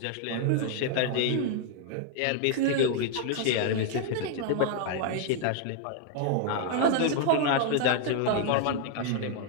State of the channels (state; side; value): different; both; correlation 0.00